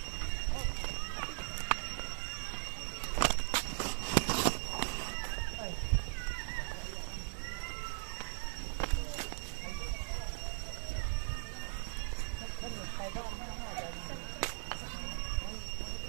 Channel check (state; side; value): silent; left; digital silence